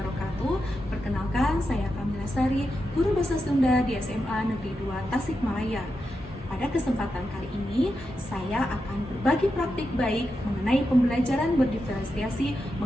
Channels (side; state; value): both; normal; correlation 0.87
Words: Perkenalkan, saya Kamila Sari, guru bahasa Sunda di SMA Negeri 2 Tasikmalaya. Pada kesempatan kali ini, saya akan berbagi praktik baik mengenai pembelajaran berdiferensiasi